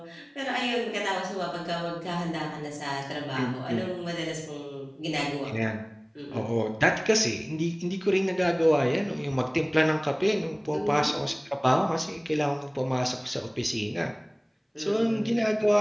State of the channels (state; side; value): identical; both; correlation 1.00